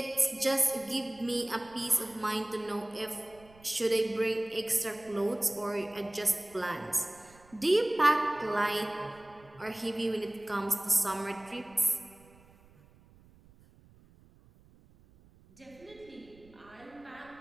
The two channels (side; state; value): right; noise; rumble, 26 dB below the sound